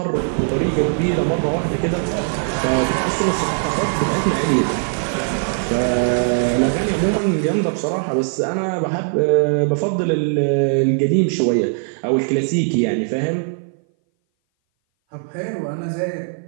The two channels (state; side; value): silent; left; 59 dB below the other